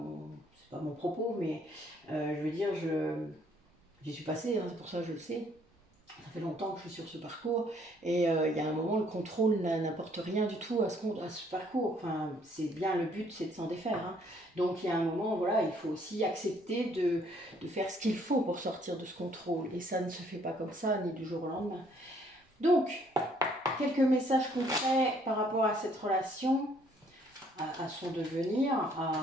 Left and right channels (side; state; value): both; normal; correlation 0.64